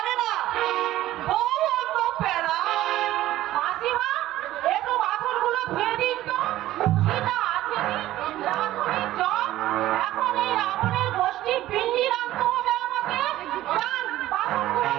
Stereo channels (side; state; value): left; quieter; 14.8 dB